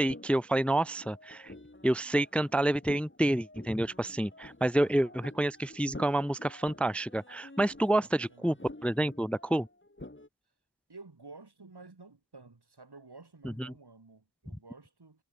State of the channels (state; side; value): normal; both; correlation 0.93